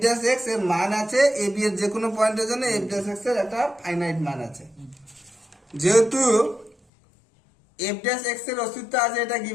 ড্যাশ এক্স এর মান আছে এবি এর যে কোনো পয়েন্টের জন্য এফ ড্যাশ এক্স এর একটা ফাইনাইট মান আছে। যেহেতু এফ ড্যাশ এক্স এর অস্তিত্ব আছে, এটা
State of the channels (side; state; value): right; drops out; at 6.8 s